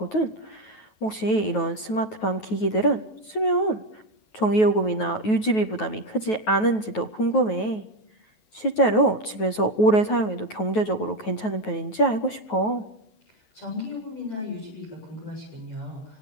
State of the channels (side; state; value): right; late; 9.3 ms